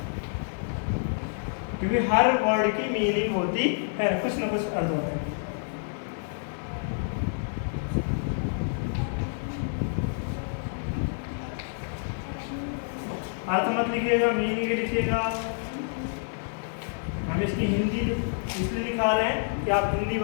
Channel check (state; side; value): silent; right; digital silence